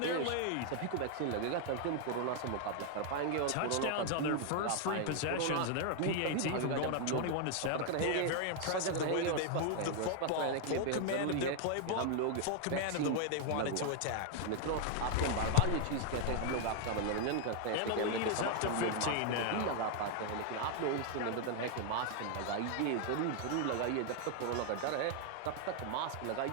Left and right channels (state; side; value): different; both; correlation 0.00